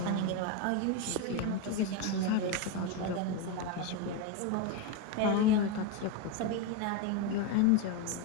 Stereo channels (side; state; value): both; different; correlation 0.04